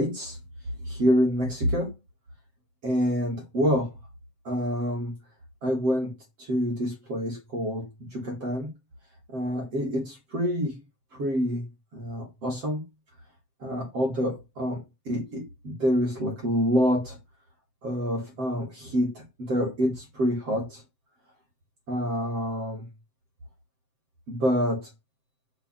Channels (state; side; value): late; left; 7.7 ms